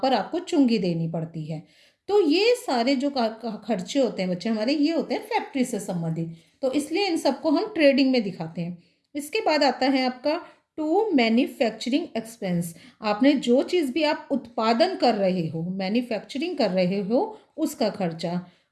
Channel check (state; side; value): identical; both; correlation 1.00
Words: आपको चुंगी देनी पड़ती है। तो ये सारे जो खर्चे होते हैं बच्चे हमारे, ये होते हैं फैक्ट्री से संबंधित, तो इसलिए इन सबको हम ट्रेडिंग में दिखाते हैं। इसके बाद आता है आपका टू मैन्युफैक्चरिंग एक्सपेंस। आपने जो चीज़ भी आप उत्पादन कर रहे हो, मैन्युफैक्चरिंग कर रहे हो, उसका खर्चा।